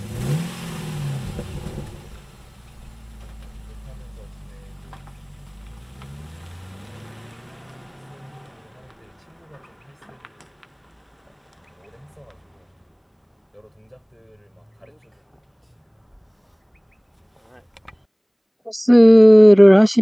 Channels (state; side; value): identical; both; correlation 1.00